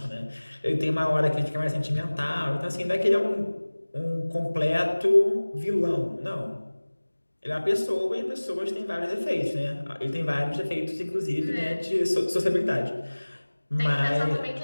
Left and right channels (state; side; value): inverted; both; correlation -1.00